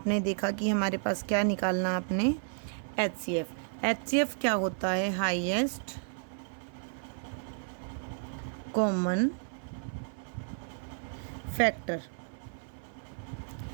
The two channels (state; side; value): silent; left; 56 dB below the other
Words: देखा कि हमारे पास क्या निकालना आपने HCF क्या होता है? Highest common factor.